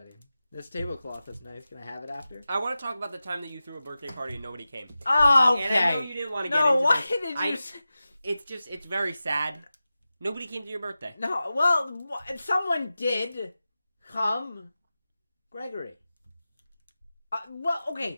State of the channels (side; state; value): both; inverted; correlation -0.94